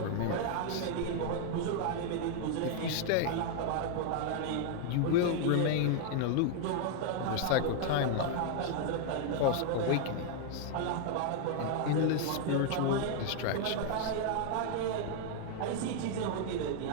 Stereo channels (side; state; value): both; different; correlation 0.00